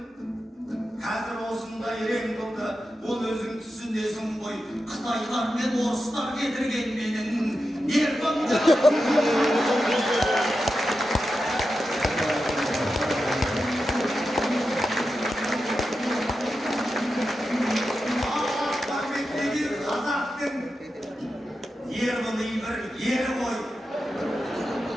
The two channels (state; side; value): normal; both; correlation 0.90